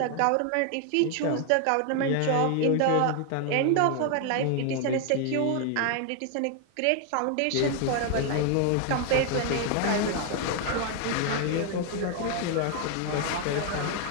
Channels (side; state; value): both; different; correlation 0.00